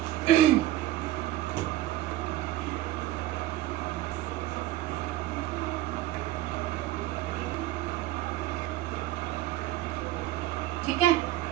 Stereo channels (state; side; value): quieter; left; 14.7 dB